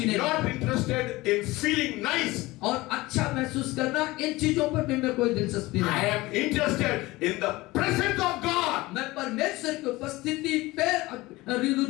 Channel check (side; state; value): right; quieter; 20.2 dB